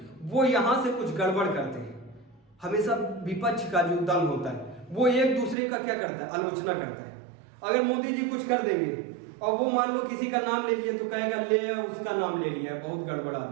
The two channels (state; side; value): drops out; left; at 5.6 s